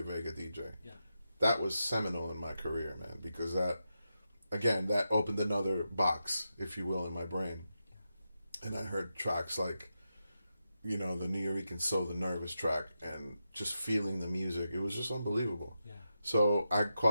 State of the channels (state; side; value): inverted; both; correlation -0.88